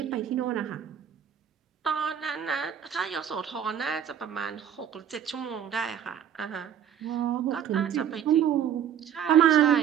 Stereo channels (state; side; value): quieter; left; 9.1 dB